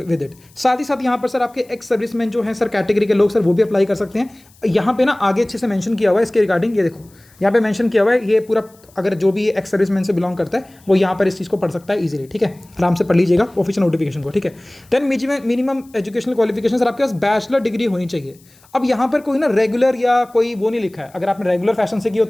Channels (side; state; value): left; noise; hiss, 29 dB below the sound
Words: it. साथ ही साथ यहाँ पर सर आपके एक्स सर्विसमैन जो हैं सर कैटेगरी के लोग सर वो भी अप्लाई कर सकते हैं। यहाँ पे ना आगे अच्छे से मेंशन किया हुआ है इसके रिगार्डिंग, ये देखो यहाँ पे मेंशन किया हुआ है, ये पूरा अगर जो भी एक्स सर्विसमैन से बिलोंग करता है वो यहाँ पर इस चीज़ को पढ़ सकता है इजीली, ठीक है। आराम से पढ़ लीजिएगा ऑफिशियल नोटिफिकेशन को, ठीक है। Then minimum educational qualification sir आपके पास बैचलर डिग्री होनी चाहिए। अब यहाँ पर कोई ना रेगुलर या कोई वो नहीं लिखा है, अगर आपने रेगुलर फैशन से की हो